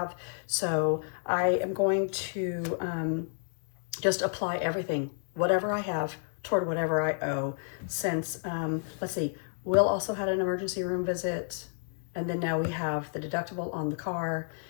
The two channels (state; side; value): silent; right; digital silence